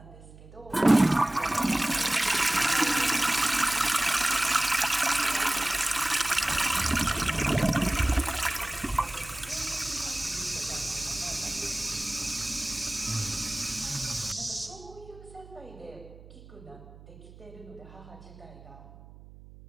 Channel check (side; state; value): right; noise; hum, 20 dB below the sound